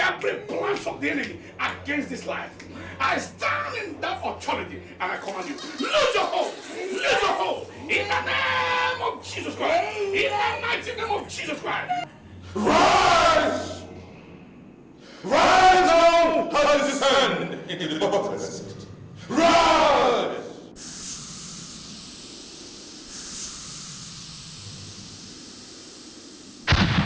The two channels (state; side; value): identical; both; correlation 1.00